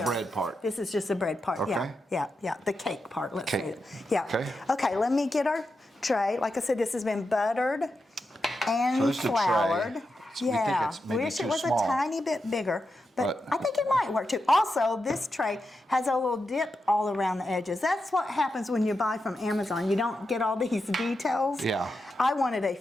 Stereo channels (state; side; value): normal; both; correlation 0.88